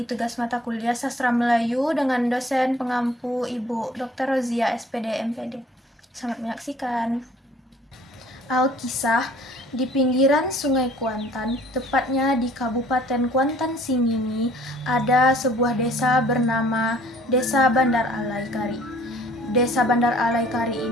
tugas mata kuliah Sastra Melayu dengan dosen pengampu Ibu Dr. Rozia SPD MPD. Selamat menyaksikan. Alkisah, di pinggiran Sungai Kuantan, tepatnya di Kabupaten Kuantan Singingi, ada sebuah desa bernama Desa Bandar Alai Kari. Desa Bandar Alai Kari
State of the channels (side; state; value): both; normal; correlation 0.55